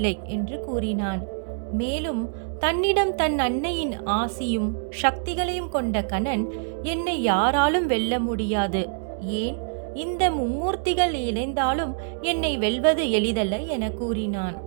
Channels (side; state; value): left; silent; digital silence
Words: என்று கூறினான். மேலும் தன்னிடம் தன் அன்னையின் ஆசியும் சக்திகளையும் கொண்ட கணன், என்னை யாராலும் வெல்ல முடியாது, ஏன் இந்த மும்மூர்த்திகள் இணைந்தாலும் என்னை வெல்வது எளிதல்ல என கூறினான்.